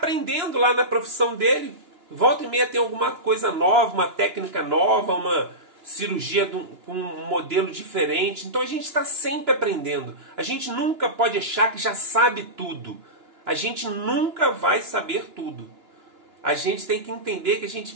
lá na profissão dele. Volta e meia tem alguma coisa nova, uma técnica nova, uma cirurgia com um modelo diferente. Então a gente está sempre aprendendo. A gente nunca pode achar que já sabe tudo. A gente nunca vai saber tudo. A gente tem que entender que a gente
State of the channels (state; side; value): late; left; 2.9 ms